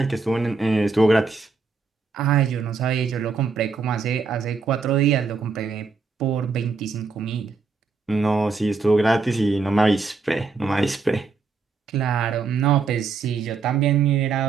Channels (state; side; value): quieter; left; 4.6 dB